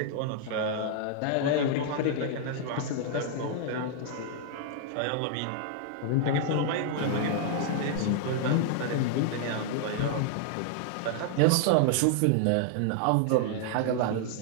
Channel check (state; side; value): different; both; correlation -0.01